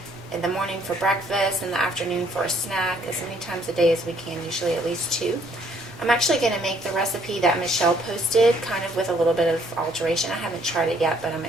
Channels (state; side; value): normal; both; correlation 0.65